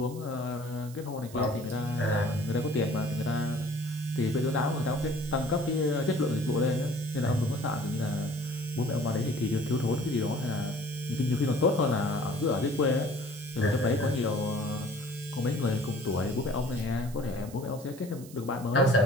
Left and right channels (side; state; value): right; noise; hiss, 19 dB below the sound